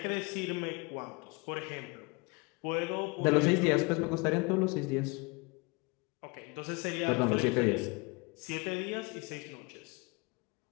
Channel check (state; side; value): quieter; right; 28.4 dB